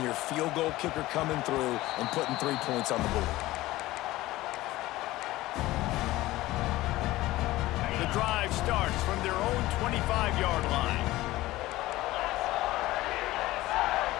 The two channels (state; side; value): quieter; right; 17.5 dB